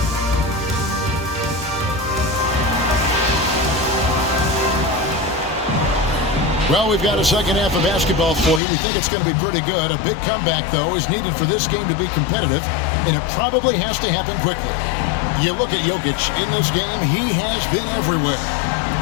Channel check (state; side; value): drops out; right; at 8.6 s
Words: Well, we've got a second half of basketball for you. We think it's going to be pretty good. A big comeback, though, is needed for this game to be competitive, and it probably has to happen quickly. You look at Jokic in this game, he has been everywhere.